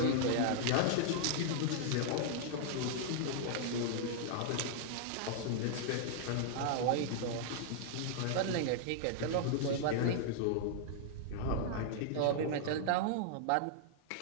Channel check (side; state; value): both; different; correlation -0.01